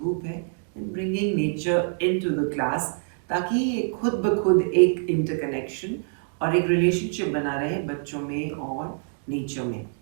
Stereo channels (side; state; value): left; silent; 61 dB below the other